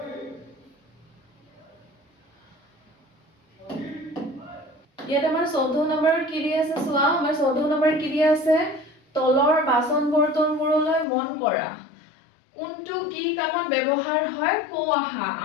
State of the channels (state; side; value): drops out; right; at 11.1 s